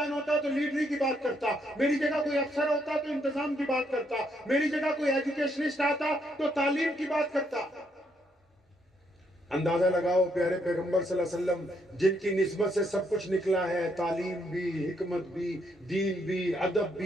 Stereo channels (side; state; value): both; normal; correlation 0.74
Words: होता तो लीडरी की बात करता, मेरी जगह कोई अफसर होता तो इंतजाम की बात करता, मेरी जगह कोई एजुकेशनिस्ट आता तो तालीम की बात करता। अंदाजा लगाओ, प्यारे पैगंबर सल्लल्लाहु अलैहि वसल्लम जिनकी निस्बत से सब कुछ निकला है, तालीम भी, हिकमत भी, दीन भी, अदब